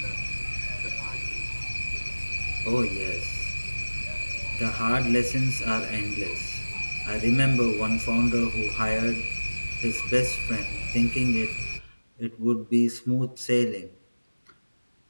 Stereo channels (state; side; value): inverted; both; correlation -1.00